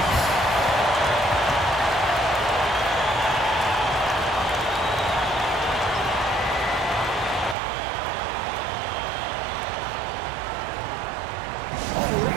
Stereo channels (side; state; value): left; drops out; at 7.6 s